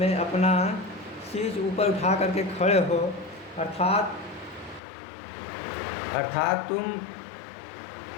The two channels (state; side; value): drops out; right; at 4.8 s